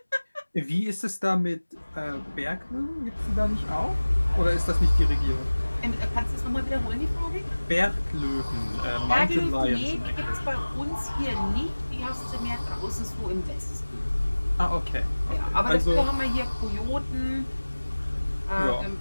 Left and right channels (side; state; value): both; inverted; correlation -1.00